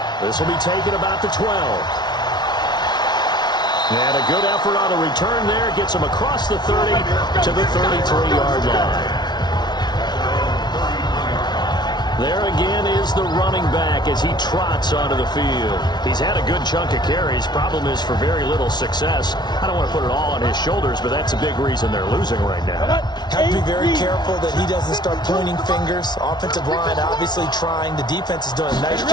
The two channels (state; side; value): late; right; 0.20 ms